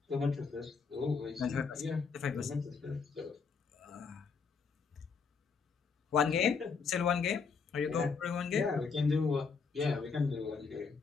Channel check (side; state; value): right; quieter; 5.3 dB